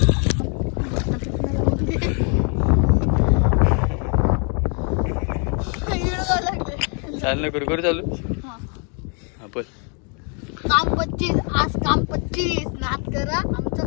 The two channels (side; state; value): right; quieter; 38.4 dB